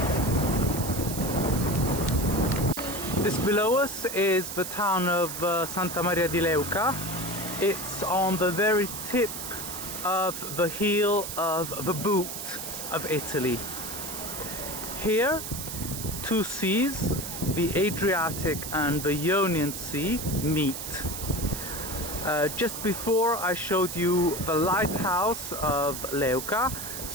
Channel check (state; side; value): noise; right; hiss, 7 dB below the sound